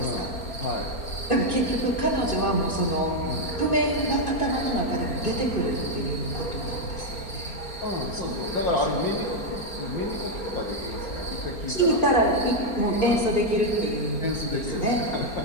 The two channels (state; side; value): late; right; 4.4 ms